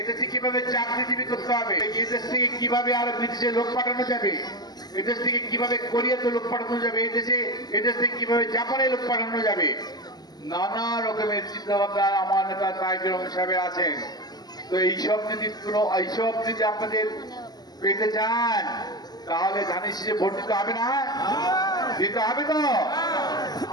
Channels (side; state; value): right; late; 0.20 ms